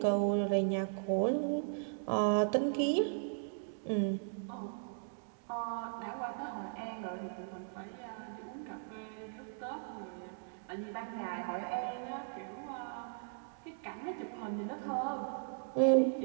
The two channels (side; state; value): left; silent; digital silence